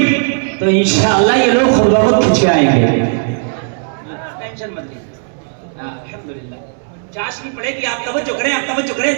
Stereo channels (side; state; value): left; silent; digital silence